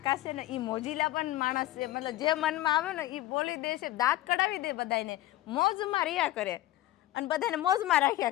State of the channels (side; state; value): right; quieter; 15.5 dB